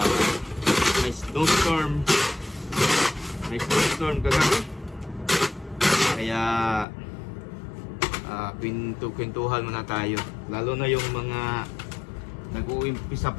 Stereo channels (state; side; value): drops out; right; at 6.9 s